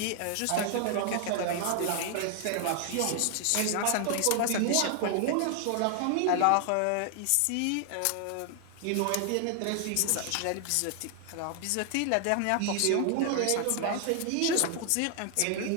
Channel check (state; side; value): different; both; correlation 0.00